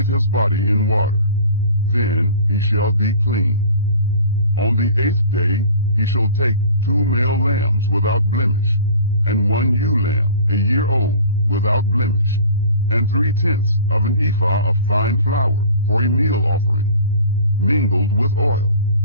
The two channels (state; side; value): inverted; both; correlation -0.43